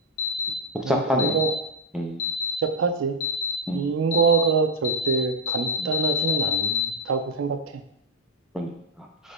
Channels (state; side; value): normal; both; correlation -0.01